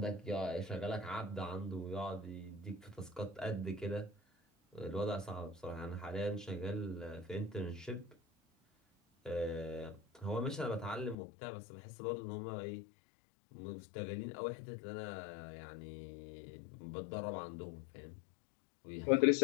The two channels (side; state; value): right; drops out; at 11.2 s